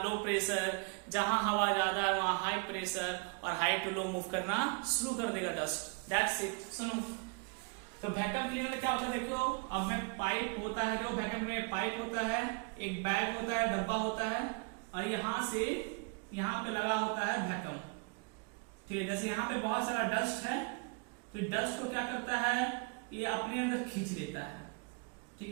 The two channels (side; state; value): left; quieter; 34.2 dB